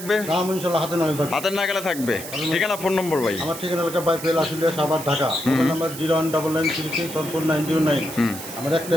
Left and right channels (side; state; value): right; noise; hiss, 11 dB below the sound